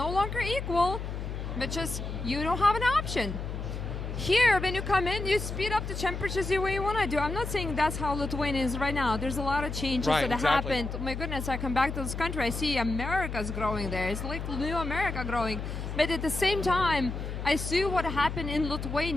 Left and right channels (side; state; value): left; noise; hum, 5 dB below the sound